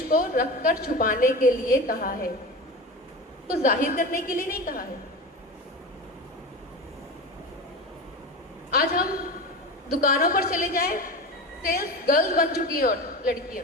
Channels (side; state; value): both; normal; correlation 0.27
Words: کو رکھ کر چھپانے کے لیے کہا ہے، کو ظاہر کرنے کے لیے نہیں کہا ہے. آج ہم دکانوں پر چلے جائیں، سیلس گرلز بن چکی ہیں، اور